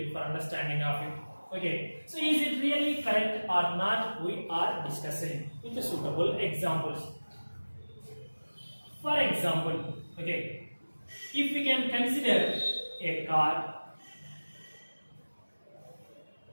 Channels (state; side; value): inverted; both; correlation -1.00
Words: for understanding of it. Okay, so is it really correct or not? We are discussing with suitable examples. For example, if we can consider a car.